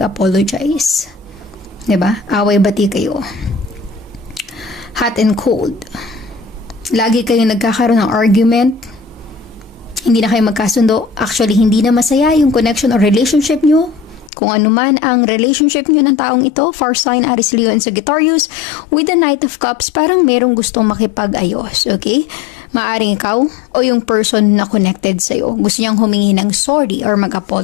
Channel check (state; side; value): drops out; right; at 14.3 s